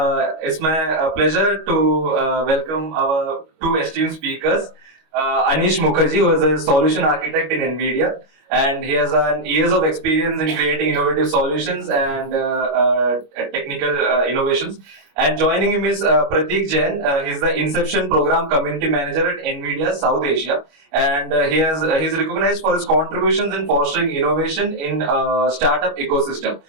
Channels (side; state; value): left; late; 25 ms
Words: It's my pleasure to welcome our two esteemed speakers. Anish Mukherjee, who is a solution architect in NVIDIA, and he has years of experience in creating innovative solutions and technical innovations. And joining him is Prateek Jain. He's the Inception Program Community Manager at NVIDIA South Asia, and he's recognized for his contributions in fostering innovation in startup ecosystem.